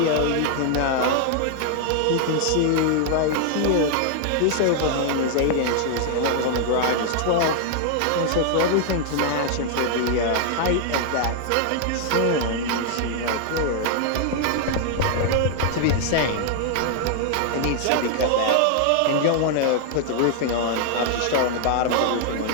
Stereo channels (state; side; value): different; both; correlation 0.00